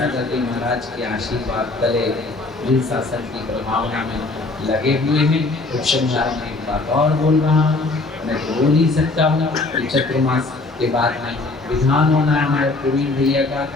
जी महाराज के आशीर्वाद तले जिन शासन की प्रभावना में लगे हुए हैं। उपसंहार में एक बात और बोल रहा हूँ, मैं तो बोल ही सकता हूँ कि चतुर्मास के बाद में विधान होना है हमारे प्रवीण भैया का,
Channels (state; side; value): quieter; right; 3.3 dB